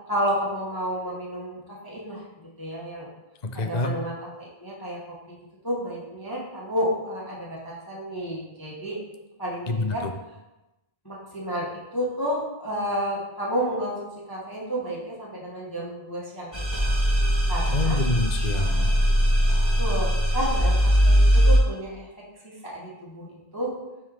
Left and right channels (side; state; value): right; late; 1.3 ms